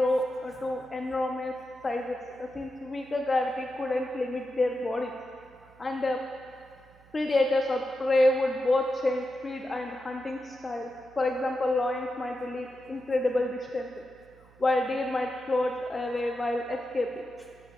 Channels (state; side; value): noise; right; hum, 26 dB below the sound